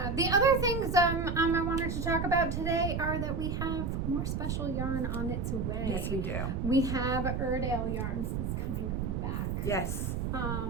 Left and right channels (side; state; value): right; noise; rumble, 1 dB below the sound